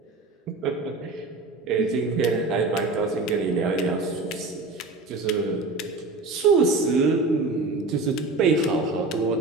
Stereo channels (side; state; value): left; quieter; 3.4 dB